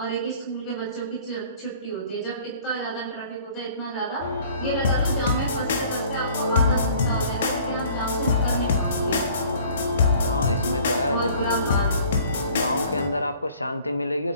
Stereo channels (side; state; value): both; inverted; correlation -0.52